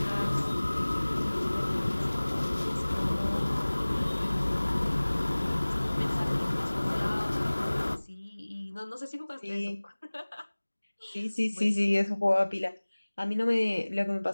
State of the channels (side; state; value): both; inverted; correlation -1.00